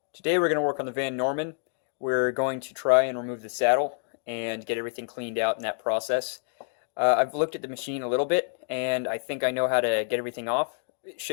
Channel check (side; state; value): right; silent; digital silence